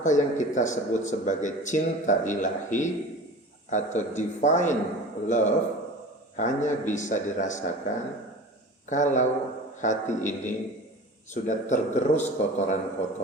yang kita sebut sebagai cinta ilahi atau divine love hanya bisa dirasakan kalau hati ini sudah tergerus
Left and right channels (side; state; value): both; normal; correlation 0.37